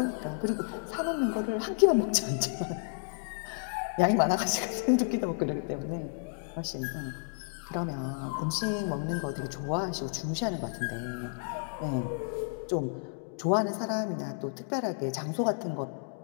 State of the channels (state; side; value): silent; right; digital silence